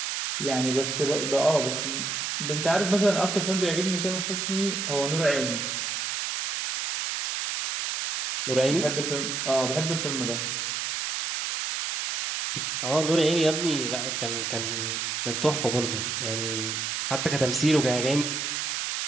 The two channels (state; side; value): noise; right; hiss, 2 dB below the sound